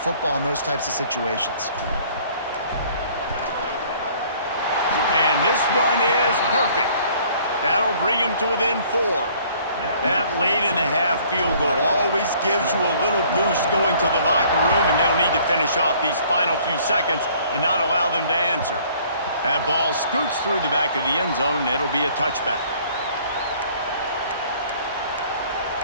in those types of situations. And this one is perfect. That'll bring him to within 4. That late in the half field goal always gives you a little boost going to the locker room, and they'll need to finish off these final few seconds and not allow them to answer. That ball scoots through the back of the end zone, and it'll be a touchback.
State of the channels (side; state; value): both; inverted; correlation -0.57